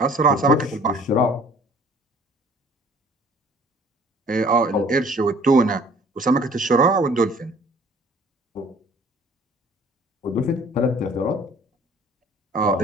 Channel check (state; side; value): normal; both; correlation 0.53